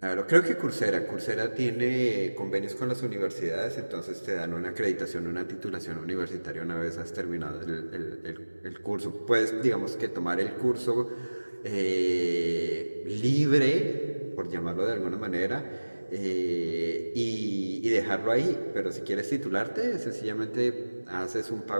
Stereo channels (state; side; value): inverted; both; correlation -1.00